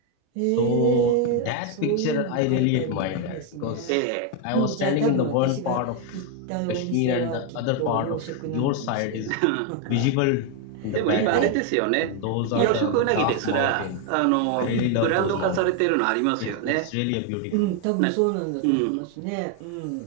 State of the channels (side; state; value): both; different; correlation 0.01